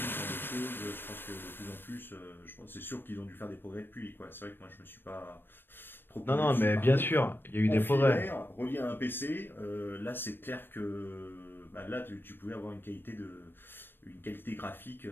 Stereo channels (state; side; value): late; right; 0.097 ms